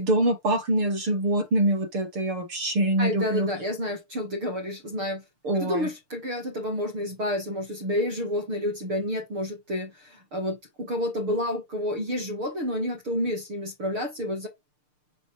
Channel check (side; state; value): left; late; 6.7 ms